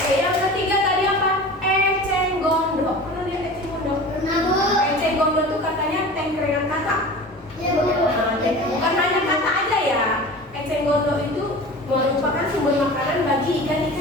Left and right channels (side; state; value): both; normal; correlation 0.36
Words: gondok itu merupakan sumber makanan bagi